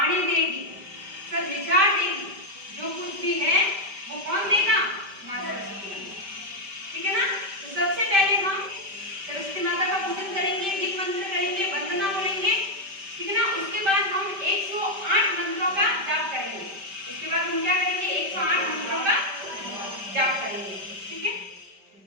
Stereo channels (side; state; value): left; late; 5.1 ms